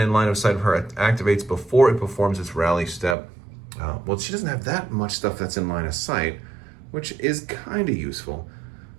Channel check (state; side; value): drops out; left; at 3.2 s